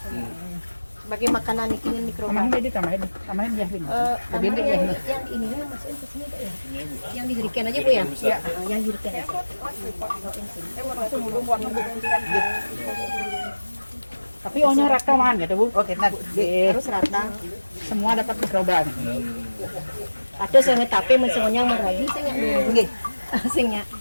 sebagai makanan ikan mikroba. tambahin deh tambahin ya ini. Lebih yang ininya masukin ke sini Pak ya. Yang dirikan aja Bu ya? Iya. Yang dirikan aja. Tapi ohnya rata man gitu Bu. Oke, nah Harus rata. Semua dapat mikroba. Ada sing tapi semuanya meragi sing nggih. Singnya.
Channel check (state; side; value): inverted; both; correlation -1.00